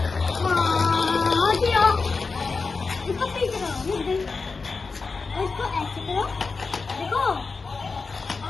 इसको पीछे करो और इसको ऐसे करो, देखो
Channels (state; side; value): quieter; right; 4.4 dB